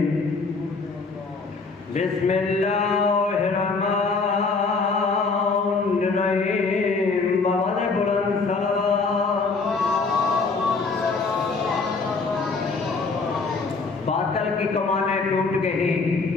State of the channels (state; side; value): quieter; right; 4.2 dB